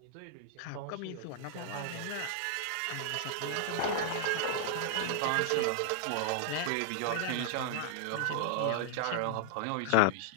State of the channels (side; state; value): both; different; correlation -0.01